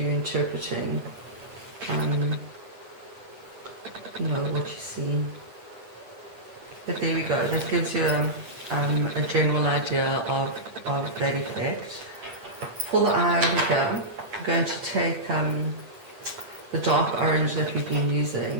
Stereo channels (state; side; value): late; left; 8.8 ms